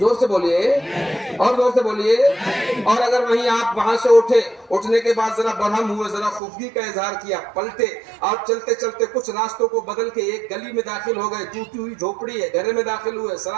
سے بولیے اور زور سے بولیے. اور اگر وہیں آپ وہاں سے اٹھنے کے بعد ذرا برہم ہوئے, ذرا خفگی کا اظہار کیا, پلٹے اور چلتے چلتے کچھ راستوں کو بدل کے ایک گلی میں داخل ہو گئے, ٹوٹی ہوئی جھوپڑی ہے, گھر میں داخل ہوئے,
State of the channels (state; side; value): drops out; left; at 6.4 s